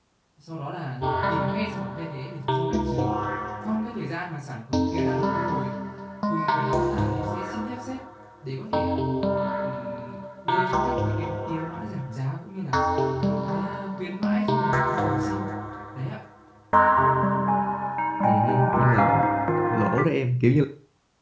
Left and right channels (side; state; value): both; identical; correlation 1.00